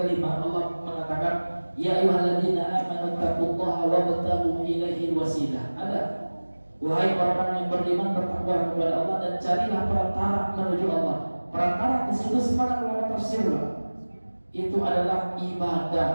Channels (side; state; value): both; inverted; correlation -1.00